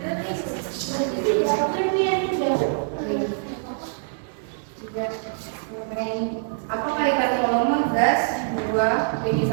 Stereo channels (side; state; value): left; silent; 62 dB below the other